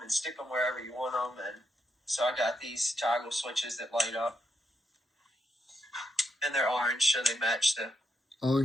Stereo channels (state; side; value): normal; both; correlation 0.82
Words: and stick them wherever you want them. And so I got these toggle switches that light up. And they're orange, so they match the...